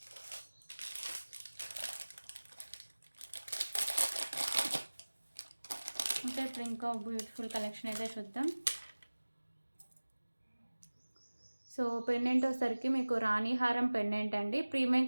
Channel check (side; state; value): both; inverted; correlation -1.00